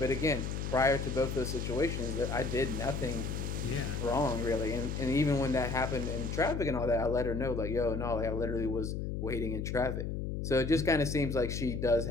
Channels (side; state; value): left; noise; hum, 3 dB below the sound